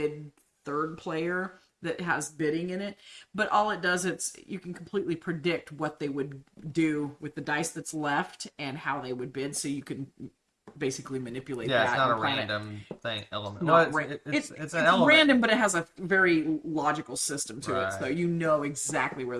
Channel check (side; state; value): both; identical; correlation 1.00